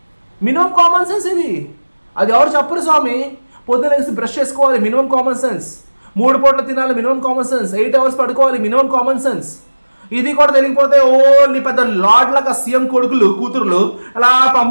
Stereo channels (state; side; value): inverted; both; correlation -1.00